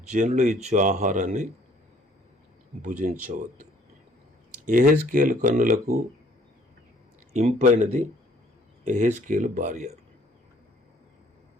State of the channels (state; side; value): normal; both; correlation 0.60